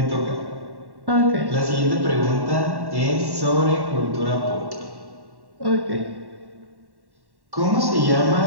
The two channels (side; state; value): left; late; 1.1 ms